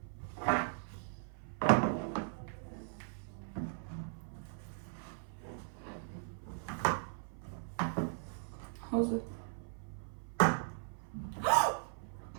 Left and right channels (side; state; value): left; silent; 52 dB below the other